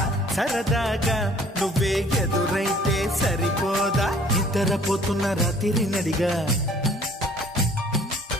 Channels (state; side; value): normal; both; correlation 0.55